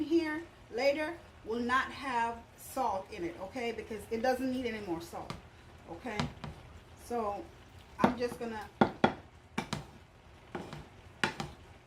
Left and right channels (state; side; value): identical; both; correlation 1.00